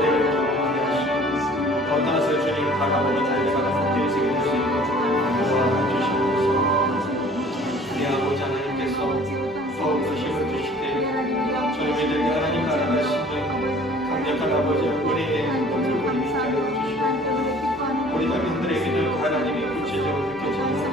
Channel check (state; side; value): normal; both; correlation 0.51